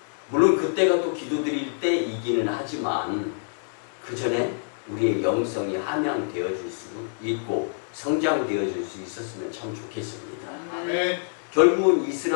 물론 그때가 또 기도드릴 때이기는 하지만 그 전에 우리의 영성이 함양되어질 수 있고 성장되어질 수 있었으면 참 좋겠습니다. 네. 결국은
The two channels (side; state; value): right; silent; digital silence